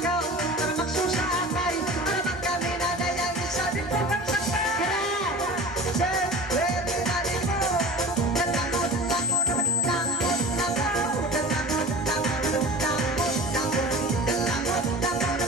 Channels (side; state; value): both; normal; correlation 0.36